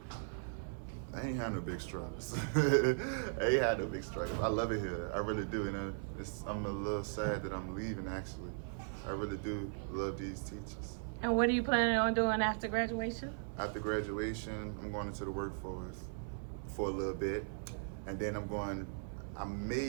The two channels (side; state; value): left; silent; 52 dB below the other